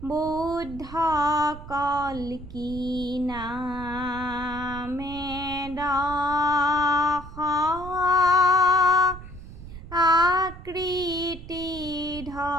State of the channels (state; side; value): noise; right; rumble, 13 dB below the sound